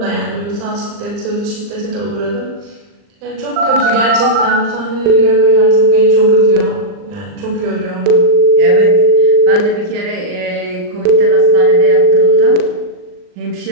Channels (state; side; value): late; left; 39 ms